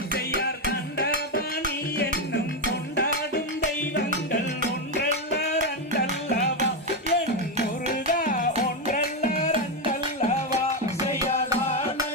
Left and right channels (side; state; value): both; normal; correlation 0.07